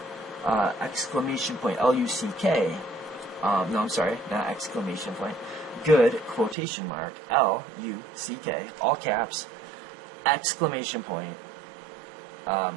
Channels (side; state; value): left; drops out; at 6.6 s